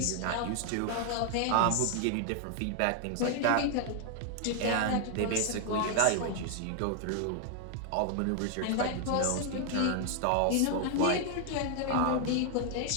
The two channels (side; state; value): both; different; correlation 0.00